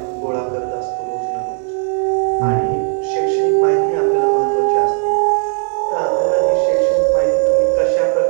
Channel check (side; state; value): left; silent; digital silence